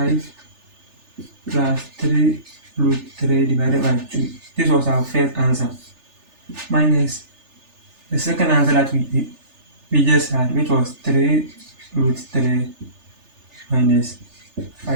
plus 3 root 3 divided by 2. This was our first answer. Minus the second answer that we just had, which was 3 root 3 minus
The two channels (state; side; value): late; left; 3.4 ms